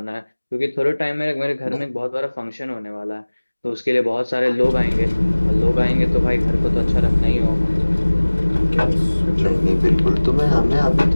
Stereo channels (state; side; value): inverted; both; correlation -1.00